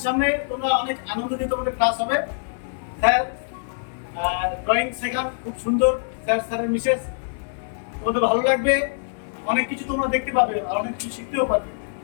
সামনে, তোমরা অনেক আনন্দ দিয়ে তোমাদের ক্লাস হবে। স্যার ড্রয়িং শেখান খুব সুন্দর, স্যারের মিসেস, তোমাদের ভালো লাগবে, অনেক কিছু তোমরা দেখতে পাবে আর অনেক কিছু শিখতেও পারবে,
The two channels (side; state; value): right; silent; 58 dB below the other